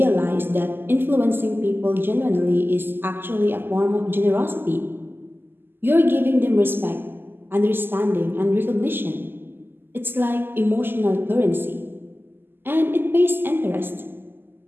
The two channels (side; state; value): left; late; 0.098 ms